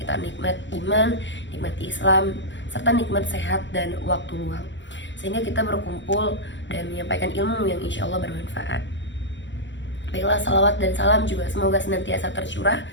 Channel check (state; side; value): late; right; 0.54 ms